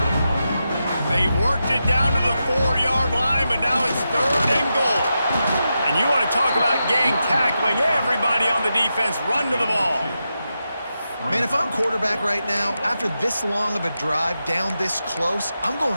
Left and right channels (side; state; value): both; inverted; correlation -0.88